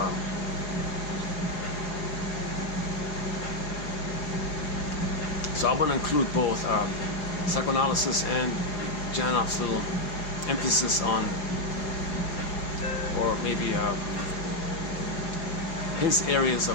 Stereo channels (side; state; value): right; late; 4.8 ms